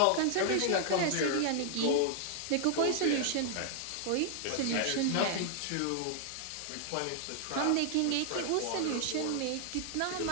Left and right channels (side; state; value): both; different; correlation -0.01